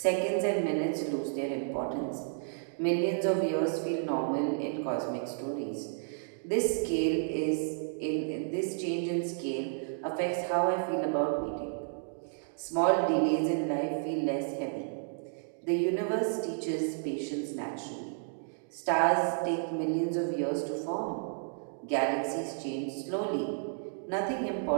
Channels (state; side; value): silent; left; digital silence